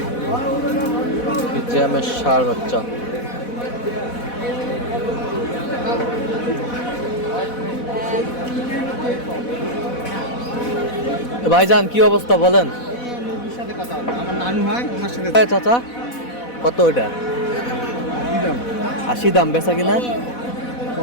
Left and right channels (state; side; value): late; right; 4.1 ms